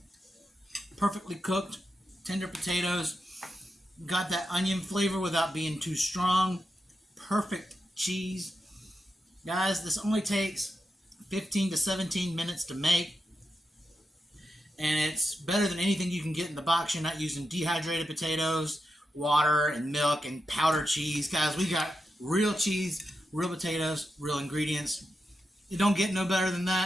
Perfectly cooked, tender potatoes. Got that onion flavor without being too strong. Perfect cheese. Guys, this only takes 15 to 17 minutes to make. And it's better than anything you can get in the box. You're not using dehydrated potatoes, water, and milk, and powdered cheese. Guys, we got real cheese, real potatoes, real ingredients. It don't get no better than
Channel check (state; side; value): normal; both; correlation 0.87